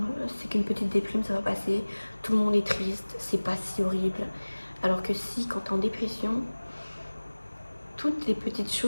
c'est qu'une petite déprime, ça va passer, tout le monde est triste, c'est pas si horrible. Alors que si, quand t'es en dépression, toutes les petites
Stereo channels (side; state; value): both; inverted; correlation -1.00